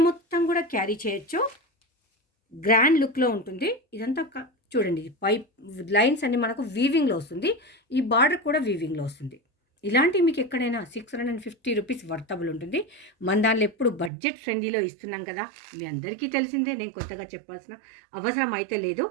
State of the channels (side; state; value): left; drops out; at 14.1 s